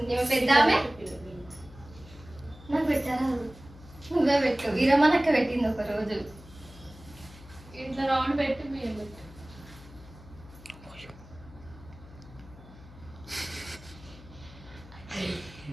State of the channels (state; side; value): noise; left; hum, 19 dB below the sound